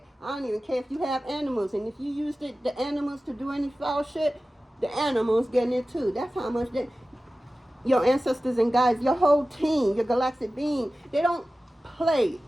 I don't even care if you have animals, and if you use the animals to do any foul shit, the animals getting it too. That's how much your ancestors and guides, your whole team, your galactic being, they don't play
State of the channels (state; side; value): normal; both; correlation 0.95